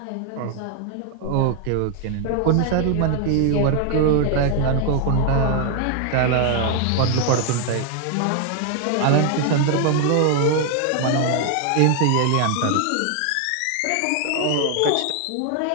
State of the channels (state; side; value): different; both; correlation 0.00